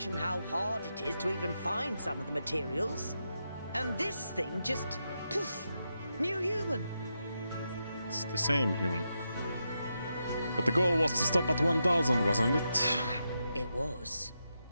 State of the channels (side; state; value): both; inverted; correlation -0.85